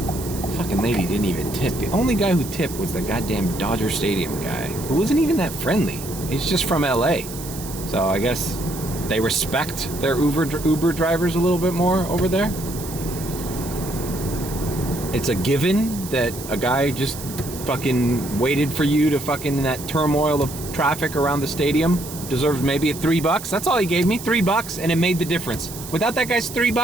Fucking lady didn't even tip. The only guy who tipped was the goddamn Dodger Stadium guy, who wasn't even that friendly. He's just from LA. So I guess they respect their Uber drivers a little bit more over there. It's a given that a guy just fucking waited for you to fucking that turmoil of traffic around the stadium deserves maybe $3. That's all he gave me, $3, and it made the difference. Without that guy's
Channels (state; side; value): noise; right; hiss, 12 dB below the sound